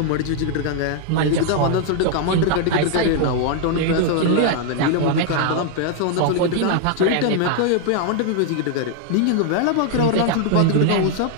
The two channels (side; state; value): both; different; correlation 0.00